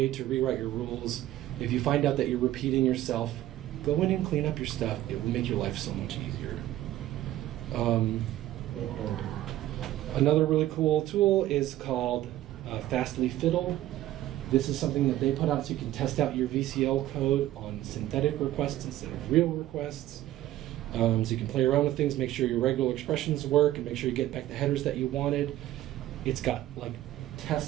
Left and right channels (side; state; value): left; quieter; 14.3 dB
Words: to rewrite your rules. If you find out that you're repeating yourself, go in and clean up your stuff. It will make your life so much easier. Another really cool tool is called Fastly Fiddle. This is something that they put out so you can test out your VCL code on synthetic requests instead of real requests. So you can play around with things, make sure your regular expressions work, and make sure you get back the headers that you wanted. It's got like